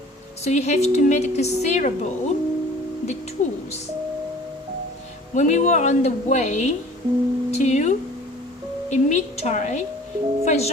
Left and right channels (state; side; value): normal; both; correlation 0.47